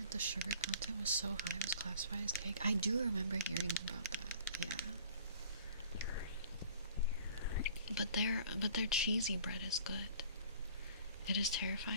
The sugar content was so high it was classified as cake. I do remember hearing about that. Yeah. But their cheesy bread is good. It is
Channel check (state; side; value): inverted; both; correlation -0.50